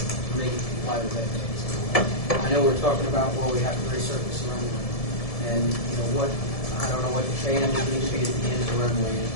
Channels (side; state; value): right; late; 1.7 ms